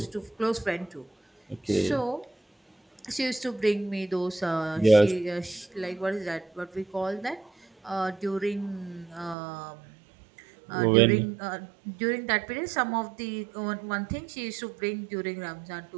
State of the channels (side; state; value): left; drops out; at 9.3 s